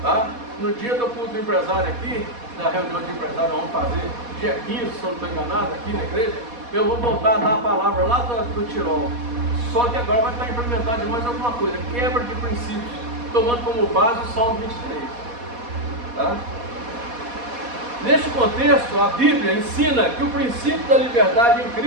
Tá? No dia do culto do empresário aqui, da reunião de empresário, vamos fazer dia 15, se eu não estou enganado, aqui na igreja, eu vou voltar a dar a palavra lá do Tirol. Só que agora vai estar implementado de mais alguma coisa, quebra de princípios, tomando como base o Salmo 23. Tá? Neste contexto, a Bíblia ensina que o princípio da liberdade em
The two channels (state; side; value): late; left; 4.2 ms